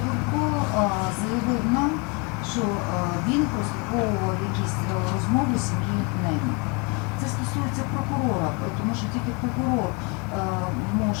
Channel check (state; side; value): quieter; right; 31.3 dB